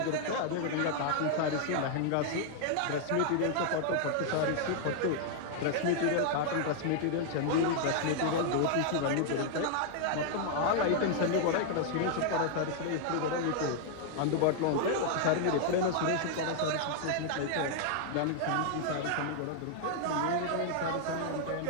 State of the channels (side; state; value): both; different; correlation 0.00